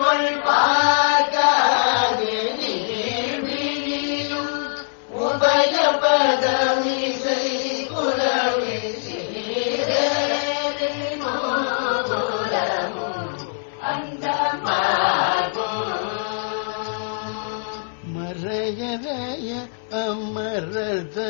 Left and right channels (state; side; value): silent; right; 64 dB below the other